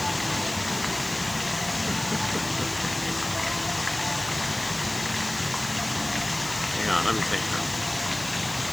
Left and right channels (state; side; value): noise; left; hiss, 12 dB below the sound